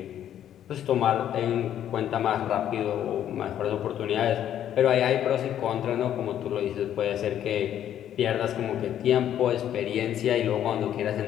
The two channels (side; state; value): right; quieter; 10.7 dB